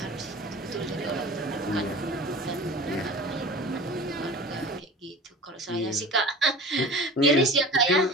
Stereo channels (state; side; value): normal; both; correlation 0.39